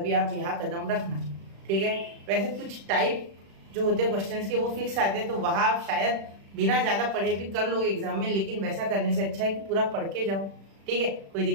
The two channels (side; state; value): left; late; 36 ms